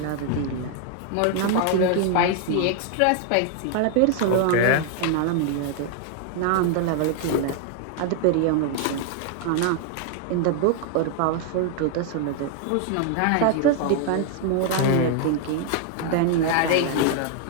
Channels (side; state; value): both; different; correlation 0.00